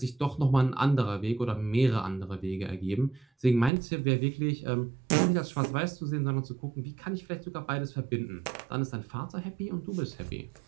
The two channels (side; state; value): left; drops out; at 3.7 s